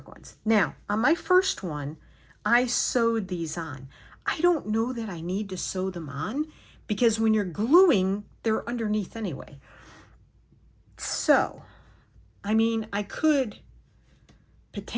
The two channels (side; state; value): both; identical; correlation 1.00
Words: ones. Now, on my first one, I sewed these on. I don't know that I need to sew them on because when you're gluing, they're underneath anyway. So, I mean, I could